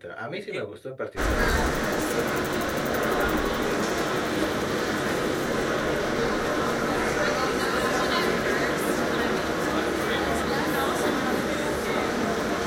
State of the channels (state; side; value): identical; both; correlation 1.00